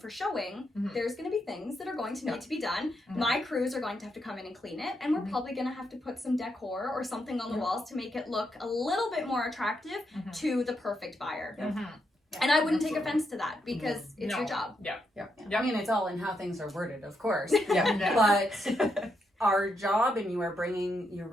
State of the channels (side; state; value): both; normal; correlation 0.81